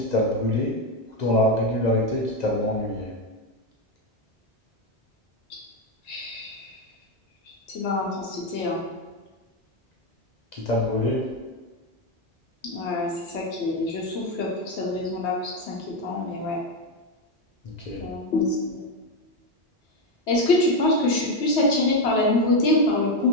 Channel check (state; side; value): normal; both; correlation 0.08